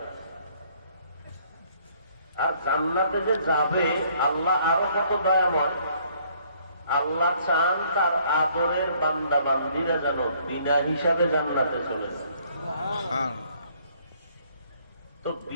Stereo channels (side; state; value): both; inverted; correlation -0.63